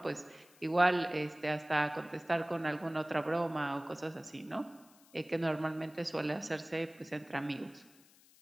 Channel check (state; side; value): noise; left; hiss, 27 dB below the sound